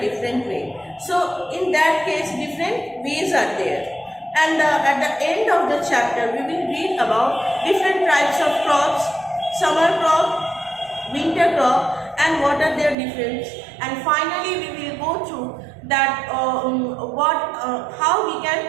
way. So in that case, different ways are there. And at the end of the chapter, we will read about different types of crops: summer crop, winter crop, and what are their difference. And finally, we will go through that how we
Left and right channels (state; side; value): drops out; left; at 13.0 s